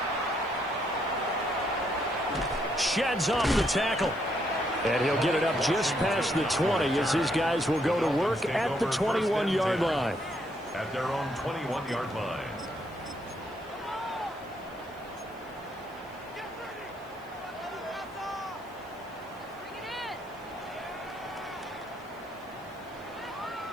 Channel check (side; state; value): right; noise; hiss, 28 dB below the sound